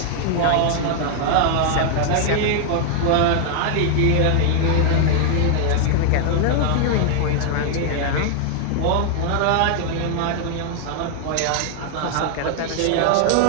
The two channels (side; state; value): both; different; correlation -0.01